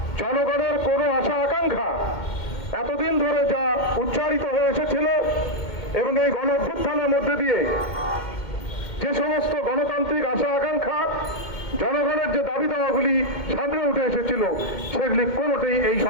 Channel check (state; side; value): late; right; 2.1 ms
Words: জনগণের কোনো আশা আকাঙ্ক্ষা এতদিন ধরে যা উচ্চারিত হয়ে এসেছিল এবং এই গণ অভ্যুত্থানের মধ্যে দিয়ে যে সমস্ত গণতান্ত্রিক আশা আকাঙ্ক্ষা, জনগণের যে দাবি দাওয়াগুলি সামনে উঠে এসেছিল সেগুলি কোনোটাই এই